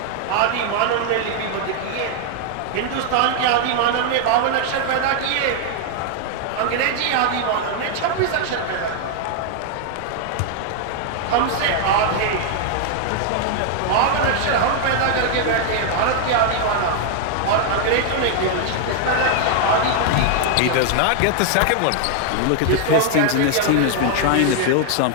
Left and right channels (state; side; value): different; both; correlation 0.00